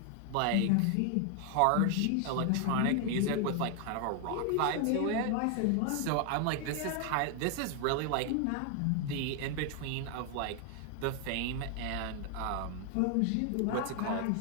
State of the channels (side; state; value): both; different; correlation 0.00